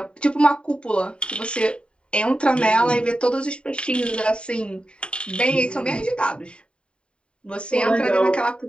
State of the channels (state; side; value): late; right; 0.054 ms